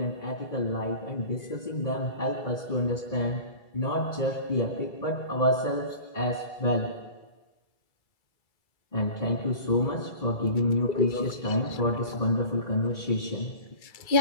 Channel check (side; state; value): right; late; 1.9 ms